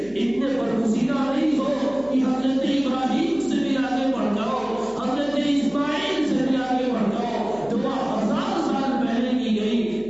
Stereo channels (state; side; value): noise; right; hum, 23 dB below the sound